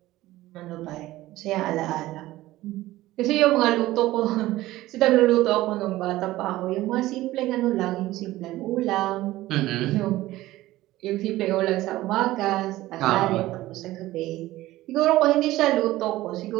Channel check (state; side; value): quieter; left; 16.6 dB